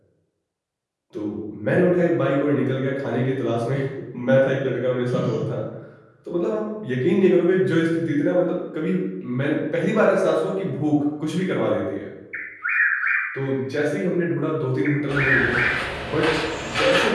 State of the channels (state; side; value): identical; both; correlation 1.00